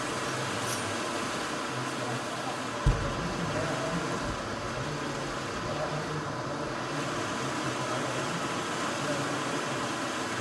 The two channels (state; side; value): identical; both; correlation 1.00